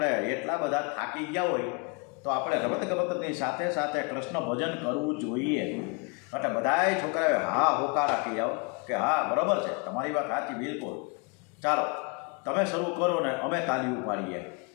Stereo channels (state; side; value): quieter; right; 31.3 dB